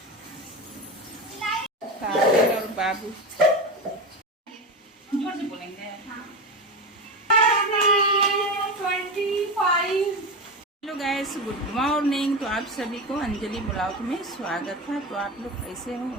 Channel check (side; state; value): both; normal; correlation 0.20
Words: काजल और बाबू जोर से बोलेंगे। Hello guys, good morning. तो आप सभी को अंजलि ब्लॉग में स्वागत है। तो आप लोग कैसे हो?